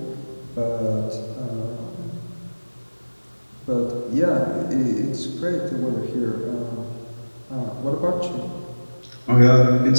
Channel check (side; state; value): both; inverted; correlation -1.00